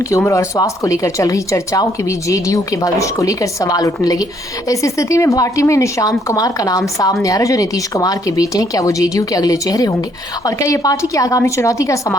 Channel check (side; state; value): both; normal; correlation 0.68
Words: उम्र और स्वास्थ्य को लेकर चल रही चर्चाओं के बीच जेडीयू के भविष्य को लेकर सवाल उठने लगे। इस स्थिति में पार्टी में निशांत कुमार का नाम सामने आ रहा है जो नीतीश कुमार के बेटे हैं। क्या वो जेडीयू के अगले चेहरे होंगे और क्या ये पार्टी की आगामी चुनौती का